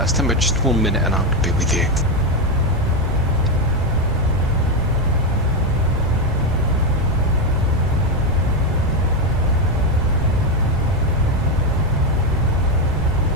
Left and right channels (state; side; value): noise; right; rumble, 6 dB below the sound